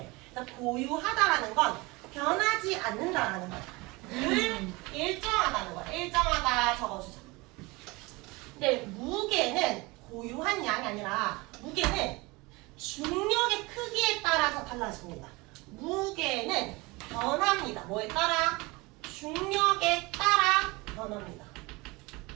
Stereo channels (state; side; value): quieter; left; 24.1 dB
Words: 그러니까 고유하다라는 건 변하지 않는다라는 거야. 늘 일정하다는 거야. 일정하다 적어주자. 근데 무게는 고유한 양이 아니라 무게는 중력의 크기에 따라서 달라집니다. 무게는 변합니다. 뭐에 따라? 중력에 따라 변합니다.